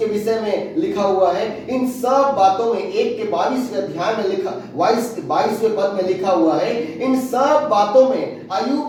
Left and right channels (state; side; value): identical; both; correlation 1.00